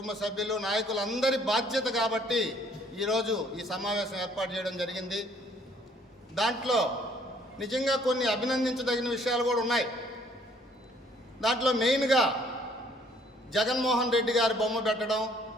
సభ్యులు, నాయకులందరి బాధ్యత కాబట్టి ఈరోజు ఈ సమావేశం ఏర్పాటు చేయడం జరిగింది. దాంట్లో నిజంగా కొన్ని అభినందించదగిన విషయాలు కూడా ఉన్నాయి. దాంట్లో మెయిన్గా జగన్మోహన్ రెడ్డి గారి బొమ్మ పెట్టడం,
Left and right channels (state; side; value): normal; both; correlation 0.61